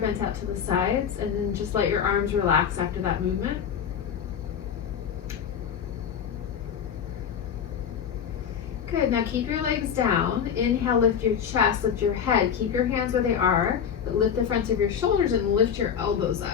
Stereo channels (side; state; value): right; quieter; 7.9 dB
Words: out to the sides, and then just let your arms relax after that movement. Good, now keep your legs down. Inhale, lift your chest, lift your head. Keep your hands where they are, but lift the fronts of your shoulders and lift your elbows